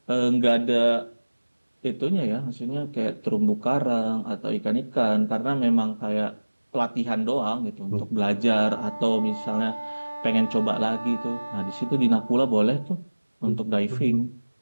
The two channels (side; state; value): both; inverted; correlation -1.00